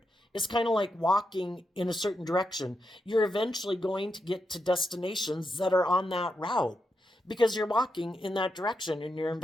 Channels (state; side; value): normal; both; correlation 0.85